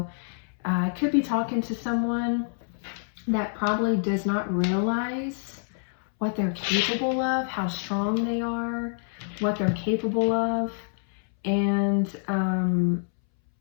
I could be talking to someone that probably does not realize what they're capable of, how strong they are, what they're capable of. And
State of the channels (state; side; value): silent; right; 60 dB below the other